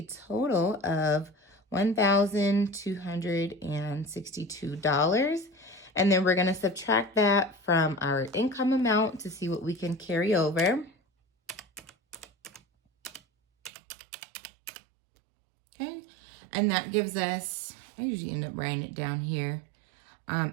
total of $1,262. And then we're going to subtract that from our income amount to see what we can carry over. Okay. And that gives us, I usually end up writing it down here,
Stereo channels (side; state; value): left; drops out; at 13.7 s